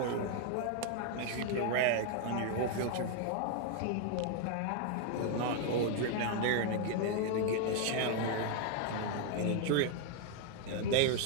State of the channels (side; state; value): both; different; correlation 0.00